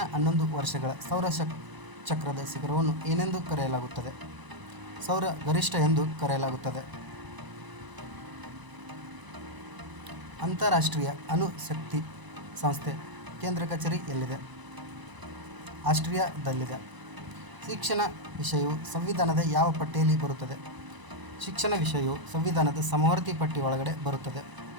11 ವರ್ಷಗಳ ಸೌರ ಚಕ್ರದ ಶಿಖರವನ್ನು ಏನೆಂದು ಕರೆಯಲಾಗುತ್ತದೆ? ಸೌರ ಗರಿಷ್ಠ ಎಂದು ಕರೆಯಲಾಗುತ್ತದೆ. ಅಂತಾರಾಷ್ಟ್ರೀಯ ಅಣು ಶಕ್ತಿ ಸಂಸ್ಥೆ ಕೇಂದ್ರ ಕಚೇರಿ ಎಲ್ಲಿದೆ? ಆಸ್ಟ್ರಿಯಾದಲ್ಲಿದೆ. ಶಿಕ್ಷಣ ವಿಷಯವು ಸಂವಿಧಾನದ ಯಾವ ಪಟ್ಟಿಯಲ್ಲಿ ಬರುತ್ತದೆ? ಶಿಕ್ಷಣ ವಿಷಯವು ಸಂವಿಧಾನದ ಸಮವರ್ತಿ ಪಟ್ಟಿ ಒಳಗಡೆ ಬರುತ್ತದೆ.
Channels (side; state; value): left; late; 1.0 ms